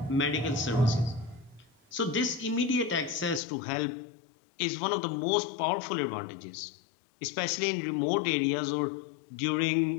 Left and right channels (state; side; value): drops out; right; at 3.4 s